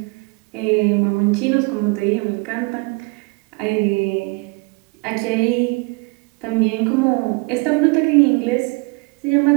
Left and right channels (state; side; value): quieter; left; 29.4 dB